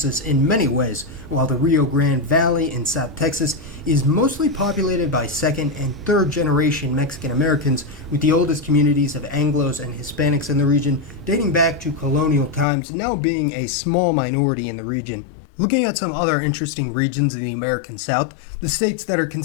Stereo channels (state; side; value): drops out; right; at 12.7 s